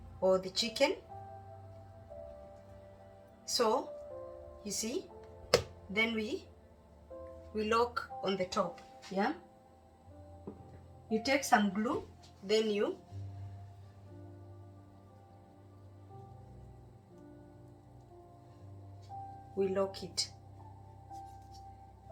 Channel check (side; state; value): both; identical; correlation 1.00